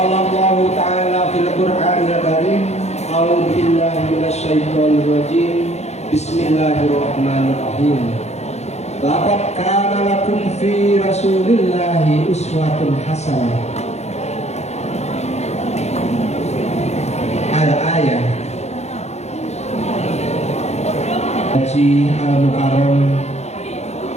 Allah ta'ala fil Qur'anil Karim, a'udzu billahi minasyaitonir rajim. Bismillahirrahmanirrahim. Laqad kana lakum fi Rasulillahi uswatun hasanah. Al-ayah Haji Al-Mukarram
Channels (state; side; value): late; right; 0.32 ms